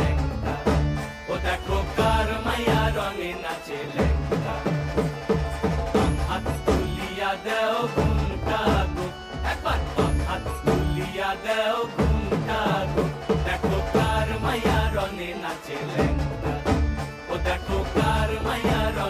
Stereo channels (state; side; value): identical; both; correlation 1.00